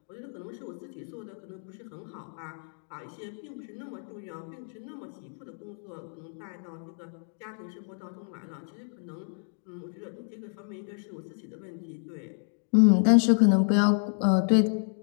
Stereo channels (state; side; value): silent; right; 58 dB below the other